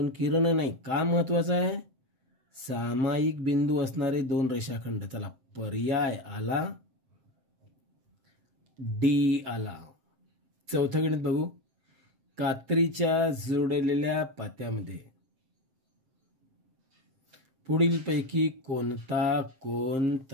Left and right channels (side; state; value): left; late; 7.6 ms